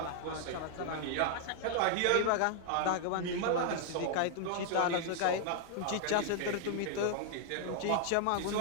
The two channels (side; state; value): both; different; correlation 0.00